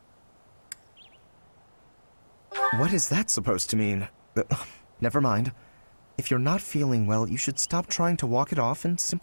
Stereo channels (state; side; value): inverted; both; correlation -1.00